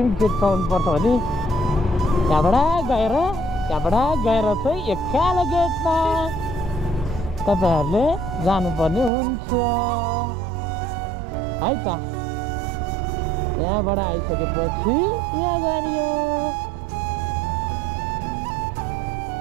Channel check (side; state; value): left; drops out; at 9.1 s